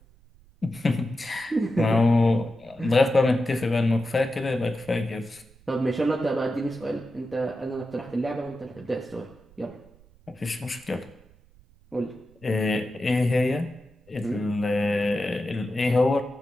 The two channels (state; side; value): noise; right; rumble, 28 dB below the sound